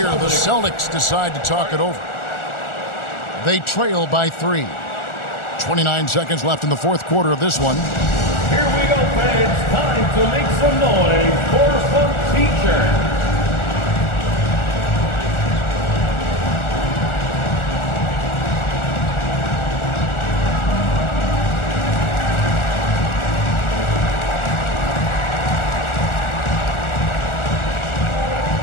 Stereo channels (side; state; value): right; late; 1.4 ms